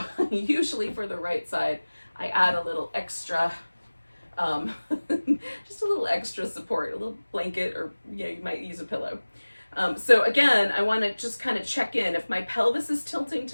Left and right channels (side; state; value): both; inverted; correlation -1.00